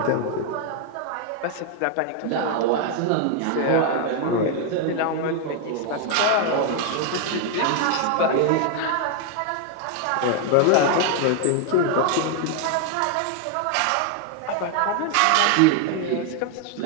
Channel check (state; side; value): different; both; correlation 0.00